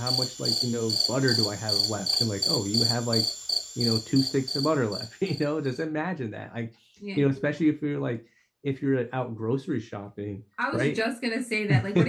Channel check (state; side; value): identical; both; correlation 1.00